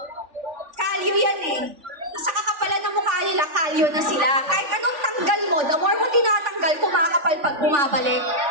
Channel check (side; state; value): left; late; 3.4 ms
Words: kalyo yan eh. Sa kakapalan ng mukha nila, kalyo na sila. Kahit anong tanggal mo, the more mo tinatanggal, kumakapal pag bumabalik.